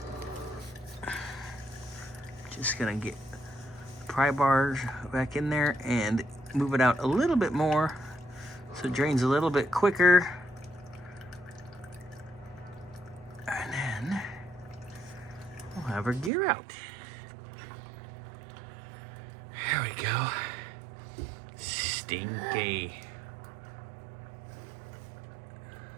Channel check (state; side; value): drops out; left; at 16.3 s